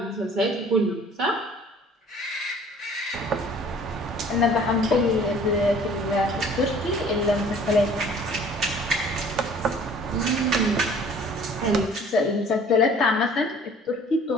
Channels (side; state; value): both; normal; correlation 0.51